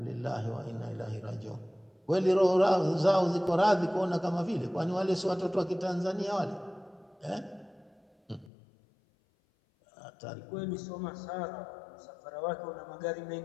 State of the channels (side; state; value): right; drops out; at 8.5 s